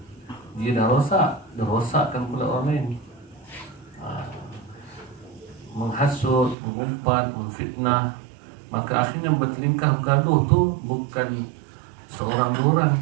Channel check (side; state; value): left; drops out; at 6.6 s